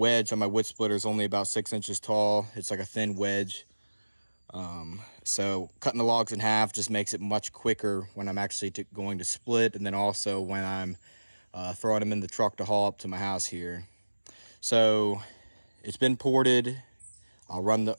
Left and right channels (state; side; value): inverted; both; correlation -1.00